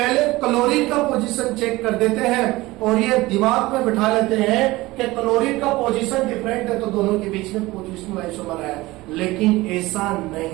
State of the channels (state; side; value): quieter; left; 19.7 dB